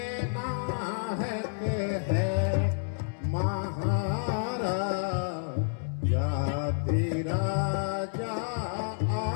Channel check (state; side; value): silent; right; digital silence